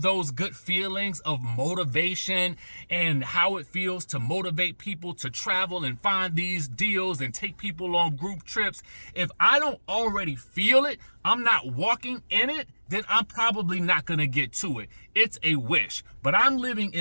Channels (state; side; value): inverted; both; correlation -1.00